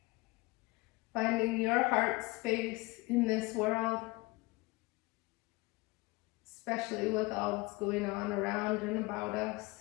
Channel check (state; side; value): quieter; right; 24.0 dB